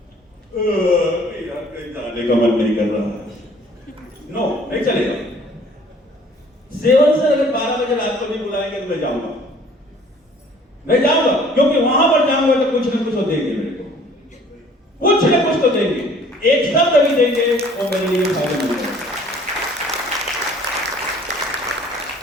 यार कहीं जाने का मन नहीं कर रहा है, नो, नहीं चलेगा। सेवन से अगर 12 बजे रात को भी बुलाएंगे तो मैं जाऊंगा, क्योंकि वहां पर जाऊंगा तो कुछ ना कुछ तो देंगे मेरे को, कुछ ना कुछ तो देंगे, एक शब्द भी देंगे वो मेरे लिए फायदेमंद है।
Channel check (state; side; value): normal; both; correlation 0.55